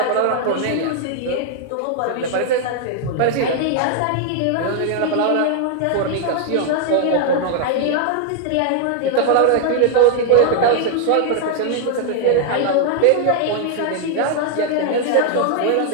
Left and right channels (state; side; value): different; both; correlation 0.00